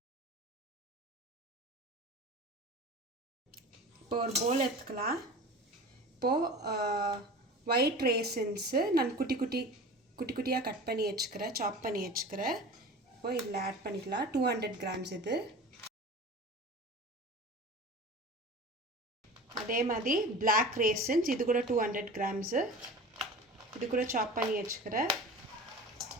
இப்போ ஒரு bowl எடுத்துக்கலாம். இப்போ white raisins நான் குட்டி குட்டியா கட் பண்ணி வச்சுக்கிறேன், சாப் பண்ணி வச்சுக்கிறேன். இப்போ இதில் ஆட் பண்ணிக்கலாம். 200 grams இது. அதே மாதிரி black raisins இது கூட 200 grams. இது கூட சாப் பண்ணி வச்சுக்கிறேன்.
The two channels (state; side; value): normal; both; correlation 0.36